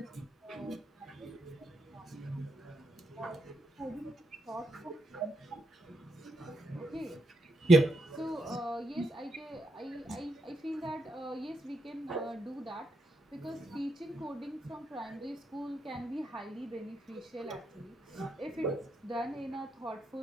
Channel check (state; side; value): normal; both; correlation 0.81